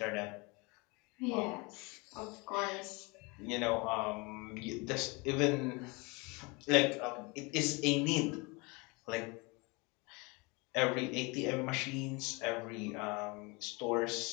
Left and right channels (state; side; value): quieter; right; 27.6 dB